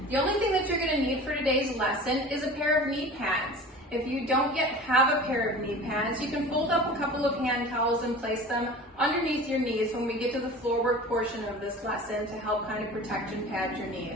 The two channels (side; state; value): both; normal; correlation 0.39